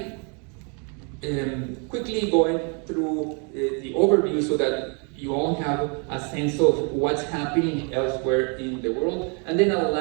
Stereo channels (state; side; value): quieter; left; 36.4 dB